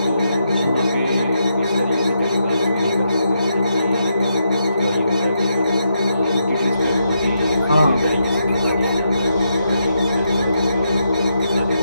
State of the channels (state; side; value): inverted; both; correlation -0.82